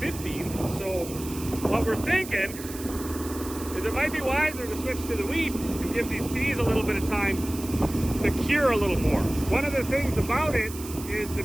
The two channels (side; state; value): right; noise; hiss, 13 dB below the sound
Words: So what we're thinking is it might be wiser to switch to the wheat and give these peas a little bit of time to cure a little more. One of the things about it is the